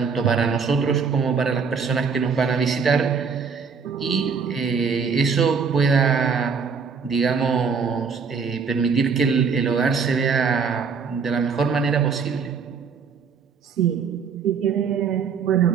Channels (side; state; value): left; quieter; 5.7 dB